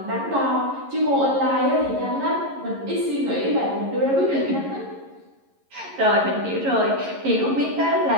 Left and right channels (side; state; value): left; late; 11 ms